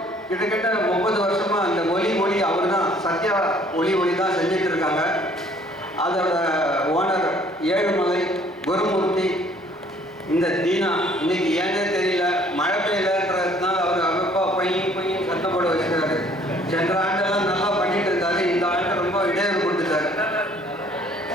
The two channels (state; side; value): normal; both; correlation 0.58